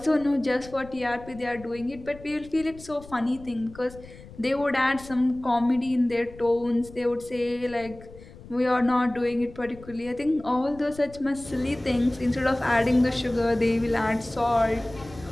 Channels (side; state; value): left; noise; rumble, 19 dB below the sound